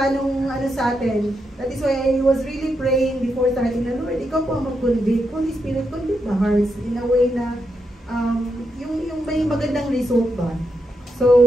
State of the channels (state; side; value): normal; both; correlation 0.83